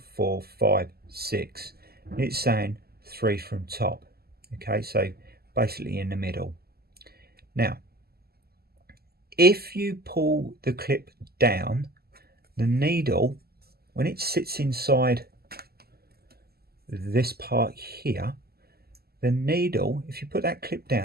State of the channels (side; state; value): left; late; 0.46 ms